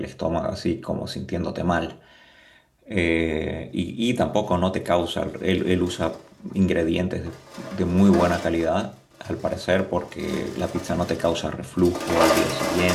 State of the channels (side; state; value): both; identical; correlation 1.00